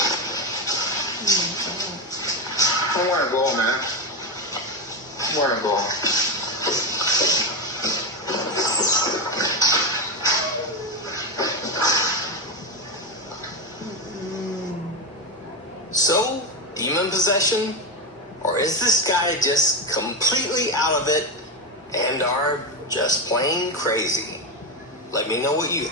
I want to go, man. I want to go. So, demon possession? Or is this guy just completely out of it and are just plain crazy? Let me know what you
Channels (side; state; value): both; normal; correlation 0.12